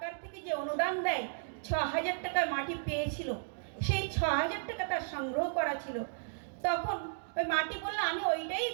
থেকে যে অনুদান দেয় 6,000 টাকা মাটি পেয়েছিল, সেই 6,000 টাকা তার সংগ্রহ করা ছিল। তখন ওই মাটি বললো, আমি ওইটাই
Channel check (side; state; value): left; silent; digital silence